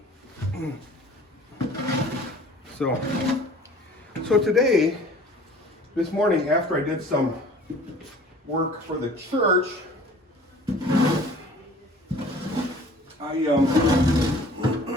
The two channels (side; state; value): both; normal; correlation 0.48